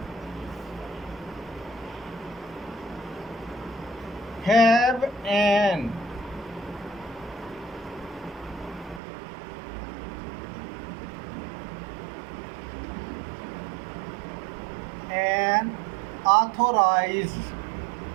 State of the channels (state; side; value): drops out; left; at 9.0 s